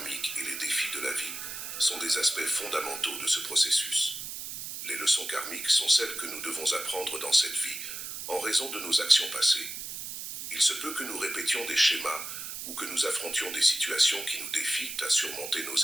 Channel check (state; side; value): noise; right; hiss, 7 dB below the sound